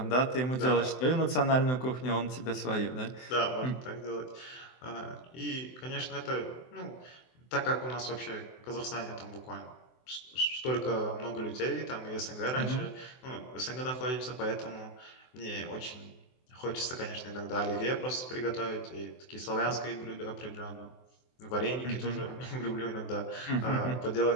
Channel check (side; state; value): right; late; 24 ms